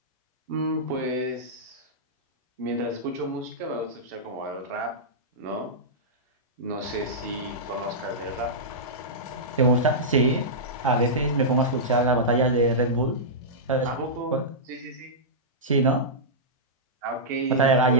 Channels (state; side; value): normal; both; correlation -0.13